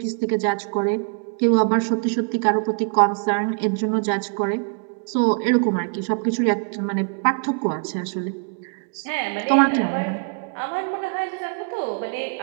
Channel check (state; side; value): quieter; left; 40.0 dB